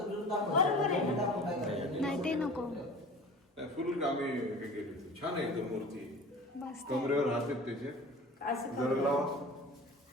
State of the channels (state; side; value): normal; both; correlation 0.40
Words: जुनं दाखवायचं. बरोबर आहे. दाखवून काय करायचं? नाही ते नको. नाही फुल कामे हे केली छान आहे एकदम मूर्ती मस्त. कमरेवर हात आहेत त्याचे असं जर करू. लावा